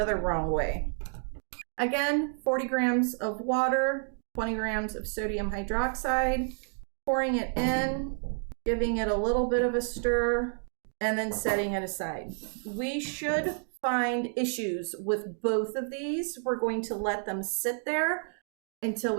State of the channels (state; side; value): silent; left; 58 dB below the other